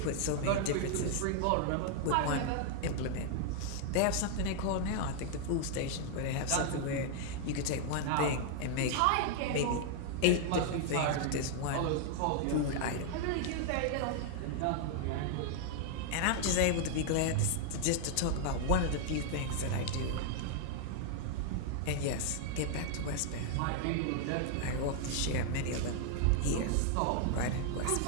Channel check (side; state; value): both; different; correlation 0.00